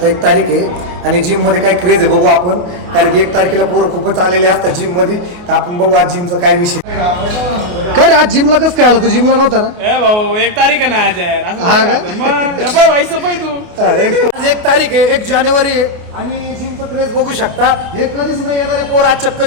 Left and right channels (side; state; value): left; late; 28 ms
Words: 1 तारीख आहे आणि जिम मध्ये काय क्रेज आहे बघू आपण, कारण की 1 तारखेला पोरं खूपच आलेले असतात जिम मध्ये. तर आपण बघू आज जिमचा काय विषय. काय रे आज जिमला कसं काय आला तू? जिमला नव्हता ना? ए भाऊ 1 तारीख आहे ना आज यार. असं हा का? मग हे बघ भाई सफाई तू. आज 1 तारीख आहे, 1 जानेवारी आहे आणि जिमचं क्रेज बघू शकता. हे कधीच नाही येणारे पोरं आज चक्क